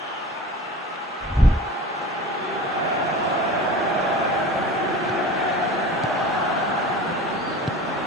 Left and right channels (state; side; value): normal; both; correlation 0.37